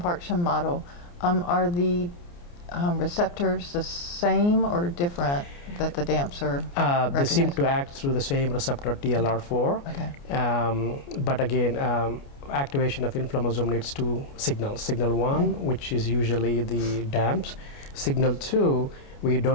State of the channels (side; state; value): right; late; 29 ms